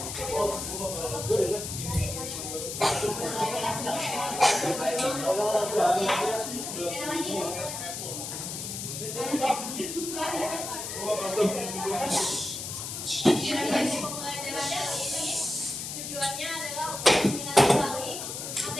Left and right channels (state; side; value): noise; left; hiss, 6 dB below the sound